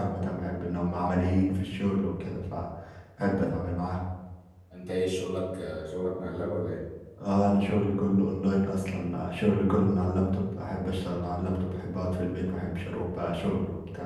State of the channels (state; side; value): identical; both; correlation 1.00